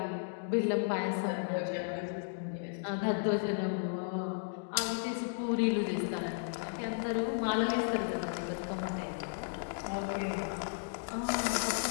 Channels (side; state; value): right; silent; digital silence